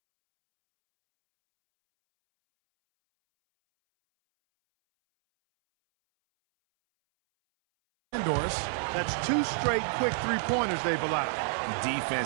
Doris. That's 2 straight quick three-pointers they've allowed.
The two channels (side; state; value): left; silent; 59 dB below the other